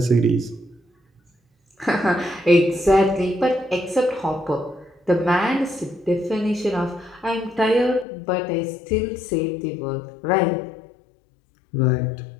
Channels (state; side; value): drops out; right; at 8.1 s